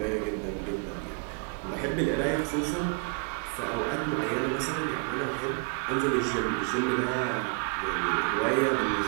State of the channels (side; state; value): left; quieter; 36.9 dB